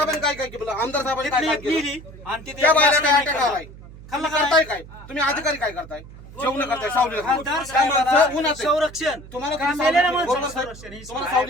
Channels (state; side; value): noise; right; hum, 17 dB below the sound